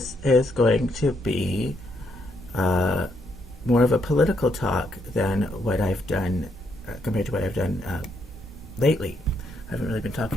is going to be more of a political talk than what I've done, compared to what I've done lately. I haven't really been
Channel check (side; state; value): both; normal; correlation 0.75